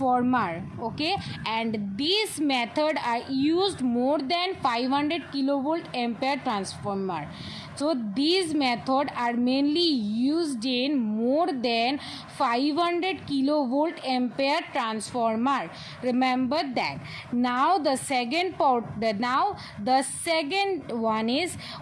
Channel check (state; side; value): identical; both; correlation 1.00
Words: Okay, and this method are used more than 500 kilovolt ampere transformer. So these methods are mainly used in more than 500 kilovolt ampere transformer. Remember that. Now the second one is